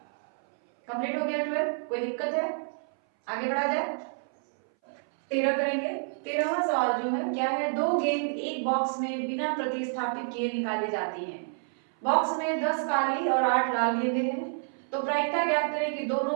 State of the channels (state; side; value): silent; left; 59 dB below the other